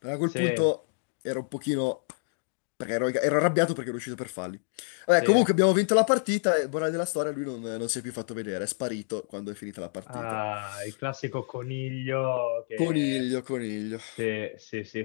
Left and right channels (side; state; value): right; silent; digital silence